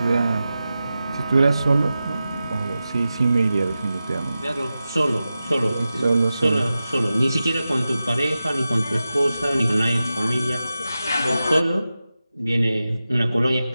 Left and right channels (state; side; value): inverted; both; correlation -0.93